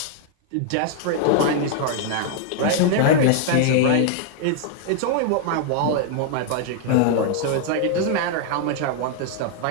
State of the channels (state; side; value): different; both; correlation 0.00